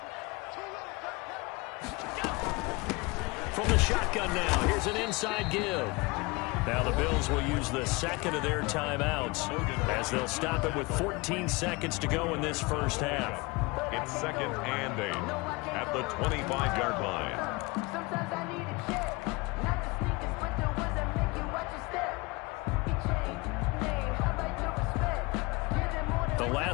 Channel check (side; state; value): right; quieter; 25.2 dB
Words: From the shotgun now, here's an inside give. Now the Bills will use the second of their timeouts as they'll stop it with 14 seconds to go in this first half. It's 2nd and 8 at the 25-yard line. The